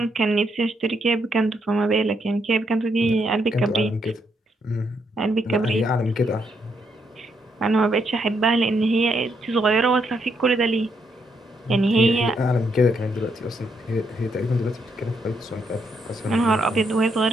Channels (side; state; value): both; normal; correlation 0.76